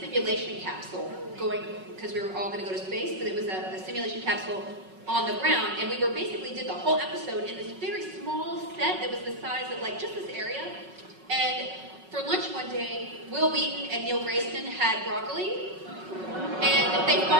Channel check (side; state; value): left; late; 5.4 ms